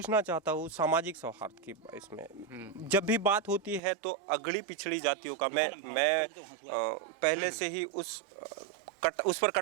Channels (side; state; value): left; drops out; at 3.8 s